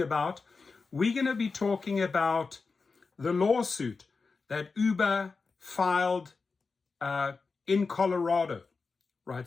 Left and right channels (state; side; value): quieter; right; 4.5 dB